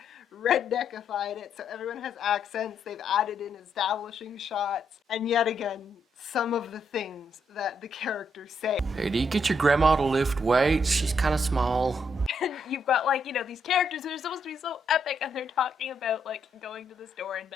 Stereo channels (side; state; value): both; normal; correlation 0.76